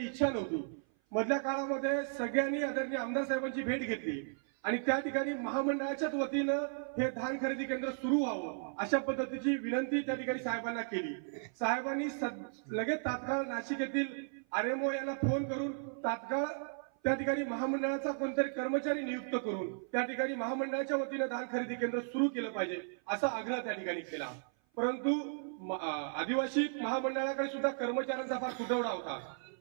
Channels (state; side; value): silent; left; 54 dB below the other